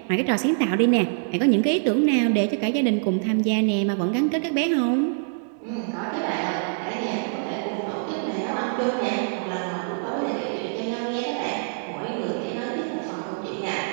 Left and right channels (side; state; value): left; silent; digital silence